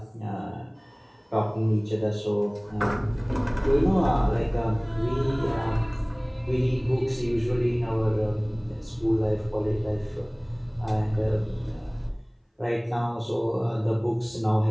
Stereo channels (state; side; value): identical; both; correlation 1.00